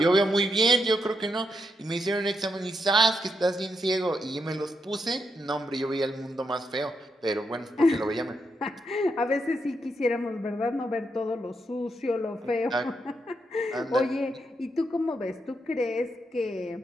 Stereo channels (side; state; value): both; normal; correlation 0.81